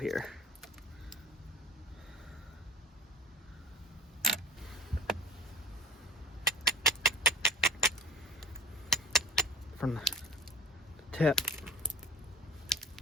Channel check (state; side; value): normal; both; correlation 0.37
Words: From the tip.